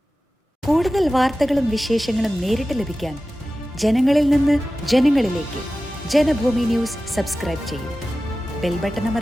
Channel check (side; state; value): both; normal; correlation 0.95